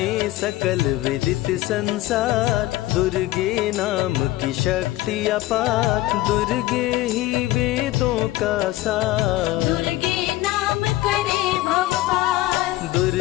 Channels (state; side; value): quieter; right; 16.7 dB